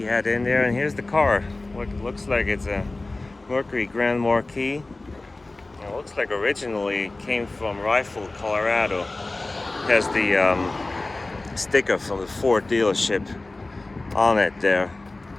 had in there, and here's the car. It looks like it's a Mercury Grand Marquis. It looks like originally it came from Rifle, Colorado. It has the sticker from the Ford dealership on it there.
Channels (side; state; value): right; quieter; 3.0 dB